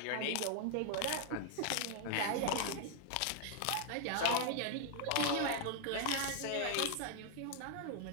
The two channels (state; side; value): different; both; correlation 0.00